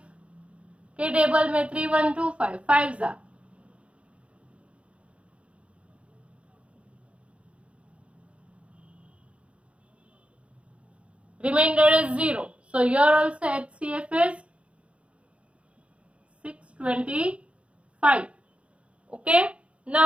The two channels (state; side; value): late; left; 0.061 ms